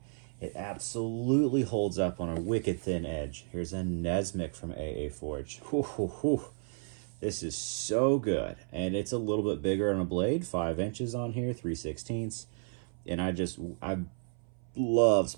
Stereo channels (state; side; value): silent; left; 56 dB below the other